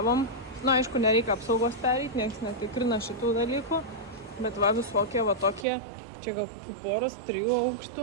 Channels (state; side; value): drops out; left; at 5.7 s